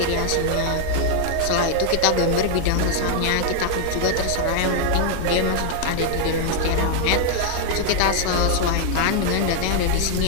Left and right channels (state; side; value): different; both; correlation 0.00